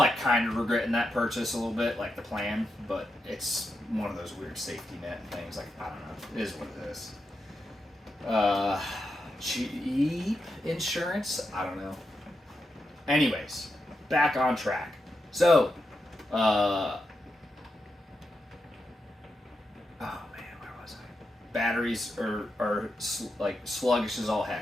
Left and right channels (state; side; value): normal; both; correlation 0.86